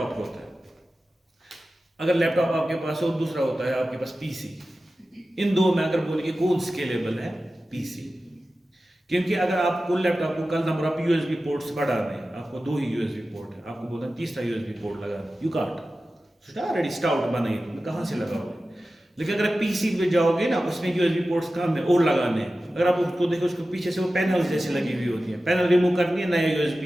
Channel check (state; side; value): normal; both; correlation 0.94